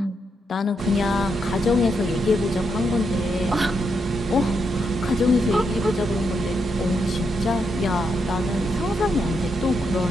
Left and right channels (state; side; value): normal; both; correlation 0.81